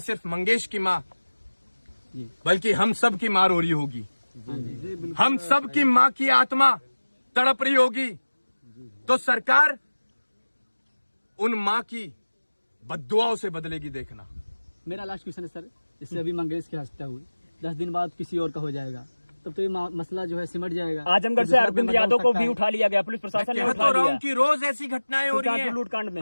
सिर्फ मंगेश की मां बल्कि हम सब की मां रो रही होगी। हम सब की मां की आत्मा तड़प रही होगी। तो सरकार उन मां की बद्दुआओं से बदलेगी, देखना। मेरा लास्ट क्वेश्चन है सर, इससे अभी मंगेश की हत्या हुई, 10 दिन बाद किसी और का हो जाएगा, तब तो ये मसला जो है सिमट जाएगा। आजमगढ़ से अरविंद यादव को भी उठा लिया गया, पुलिस प्रशासन ने कह उठा तो रहा हूं लिया। कि रोज ऐसी घटनाएं हो रही हैं। लूटकांड में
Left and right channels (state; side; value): inverted; both; correlation -1.00